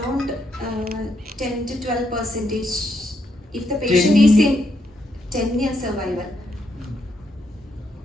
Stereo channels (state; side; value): normal; both; correlation 0.78